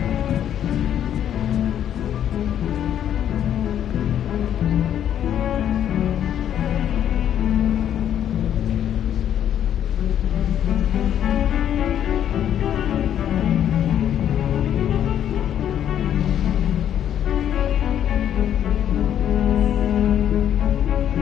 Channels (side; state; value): right; quieter; 10.1 dB